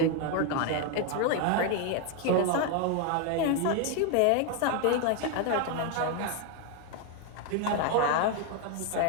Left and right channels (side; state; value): both; different; correlation 0.01